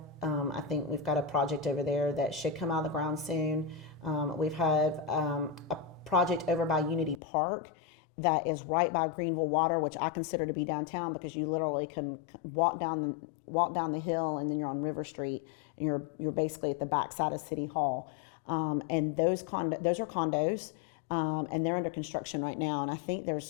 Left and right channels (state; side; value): drops out; right; at 7.2 s